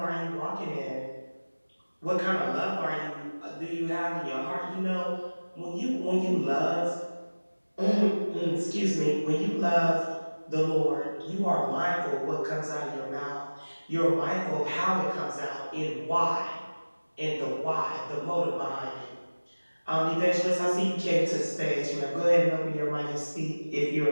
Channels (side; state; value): both; inverted; correlation -1.00